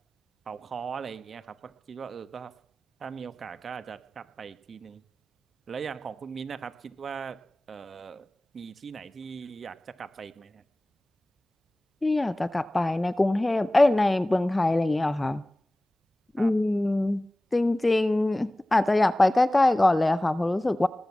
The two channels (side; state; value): both; normal; correlation 0.98